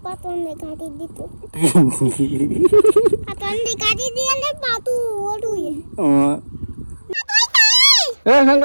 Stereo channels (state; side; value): inverted; both; correlation -1.00